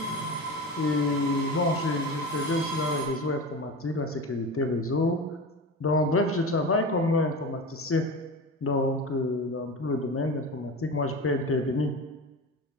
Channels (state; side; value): normal; both; correlation 0.28